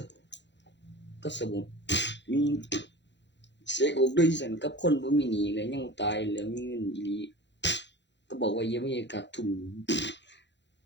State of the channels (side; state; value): right; late; 0.52 ms